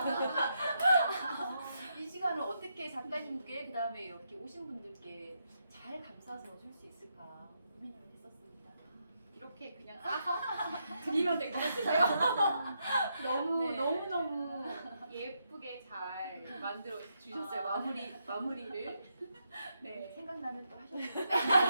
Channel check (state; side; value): inverted; both; correlation -0.81